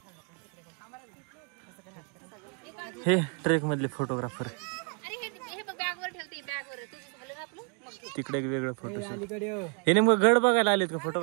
हे ट्रेक मधले फोटोग्राफर. तिकडे वेगळं फोटो. हे नेमकं गड बघायला आलेत का फोटो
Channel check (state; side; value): quieter; left; 38.7 dB